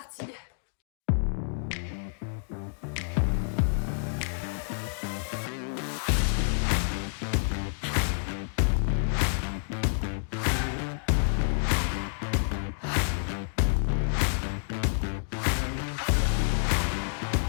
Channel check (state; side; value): silent; right; digital silence